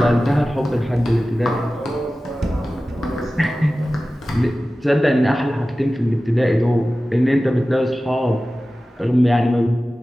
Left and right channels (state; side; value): normal; both; correlation 0.96